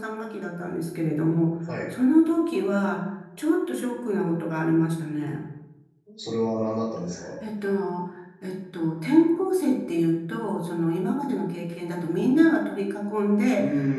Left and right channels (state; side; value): identical; both; correlation 1.00